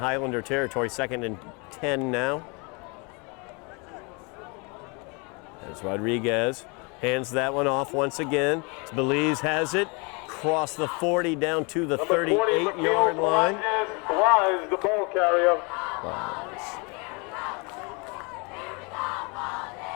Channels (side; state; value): right; quieter; 30.8 dB